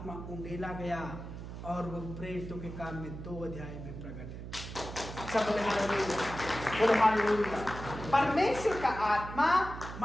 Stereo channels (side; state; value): right; noise; hum, 10 dB below the sound